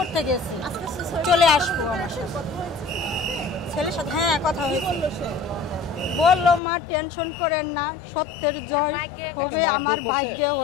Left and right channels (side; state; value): right; drops out; at 6.6 s